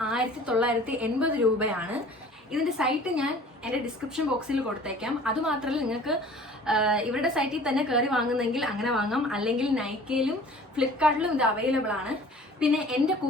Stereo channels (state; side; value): normal; both; correlation 0.47